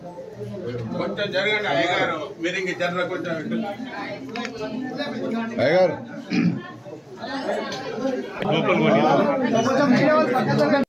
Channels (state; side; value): identical; both; correlation 1.00